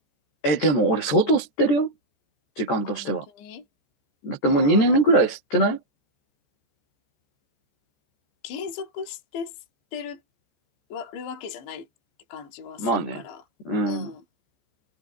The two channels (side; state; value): right; late; 14 ms